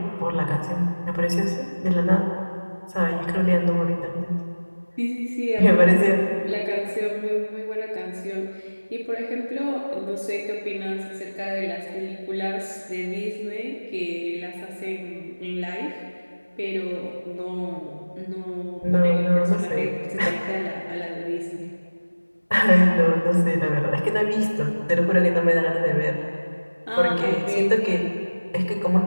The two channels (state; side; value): inverted; both; correlation -1.00